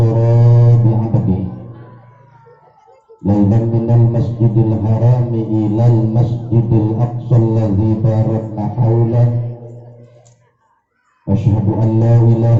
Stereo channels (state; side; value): identical; both; correlation 1.00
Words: bi'abdihi lailan minal masjidil harami ilal masjidil aqsa alladzi barakna haulahu. Asyhadu an la